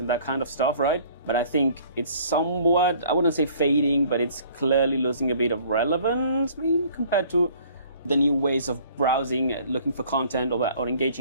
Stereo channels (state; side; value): inverted; both; correlation -0.54